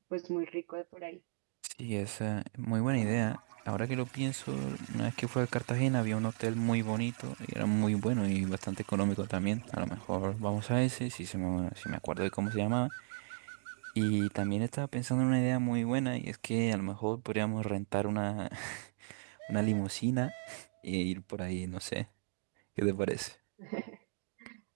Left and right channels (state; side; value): silent; left; digital silence